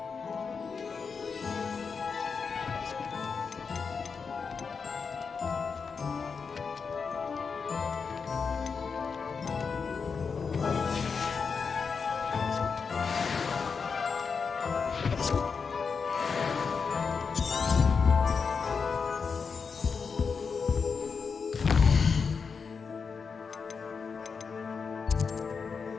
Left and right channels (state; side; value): quieter; right; 5.5 dB